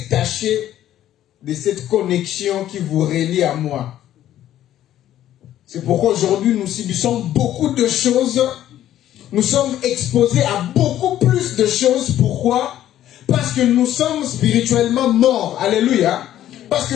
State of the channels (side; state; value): right; quieter; 12.3 dB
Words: de cette connexion qui vous relie à moi. C'est pourquoi aujourd'hui nous subissons beaucoup de choses. Nous sommes exposés à beaucoup plus de choses. Pourquoi? Parce que nous sommes spirituellement morts. Alléluia. Parce